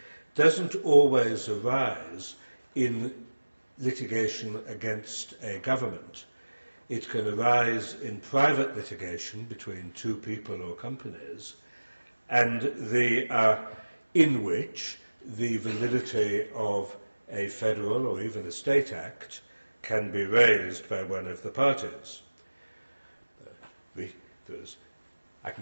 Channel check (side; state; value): both; inverted; correlation -1.00